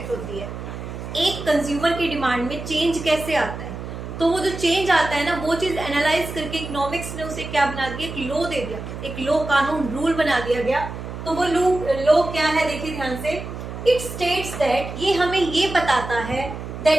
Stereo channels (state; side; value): noise; right; hum, 9 dB below the sound